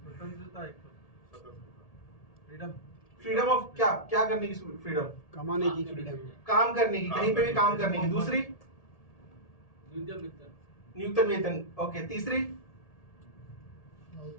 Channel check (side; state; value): right; late; 1.8 ms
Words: फ्रीडम ऑफ क्या करने की फ्रीडम? कमाने की फ्रीडम, काम करने की, कहीं पे भी काम करने की। दूसरी न्यूनतम वेतन, ओके। तीसरी